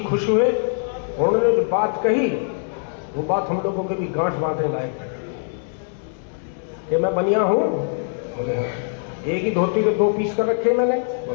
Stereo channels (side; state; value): right; silent; digital silence